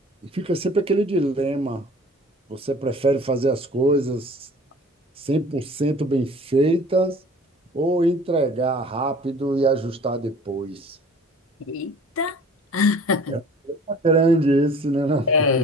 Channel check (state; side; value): normal; both; correlation 0.47